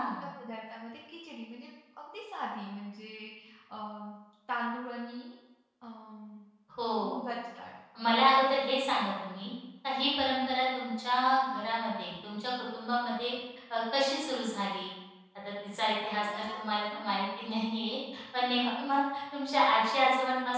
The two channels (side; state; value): both; identical; correlation 1.00